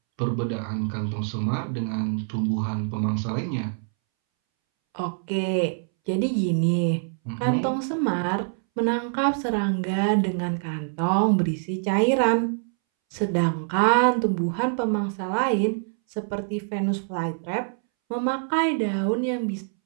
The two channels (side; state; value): left; silent; 62 dB below the other